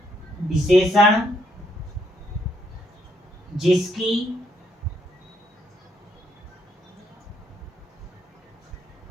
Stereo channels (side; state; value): both; normal; correlation 0.73